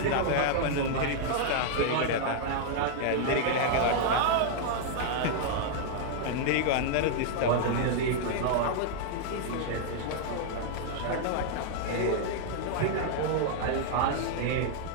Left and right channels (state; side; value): different; both; correlation -0.01